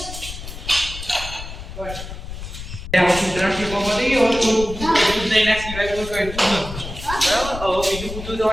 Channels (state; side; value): noise; left; rumble, 10 dB below the sound